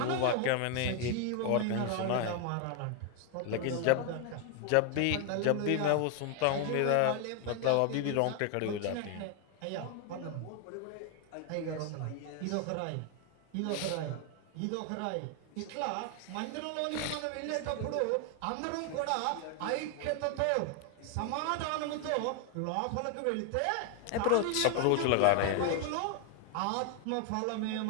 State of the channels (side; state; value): both; different; correlation 0.01